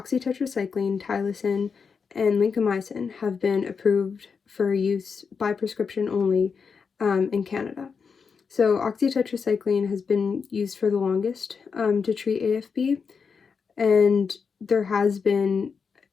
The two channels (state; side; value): quieter; right; 5.7 dB